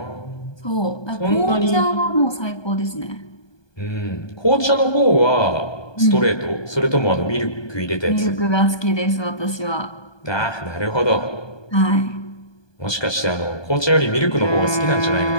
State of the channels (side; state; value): right; late; 1.2 ms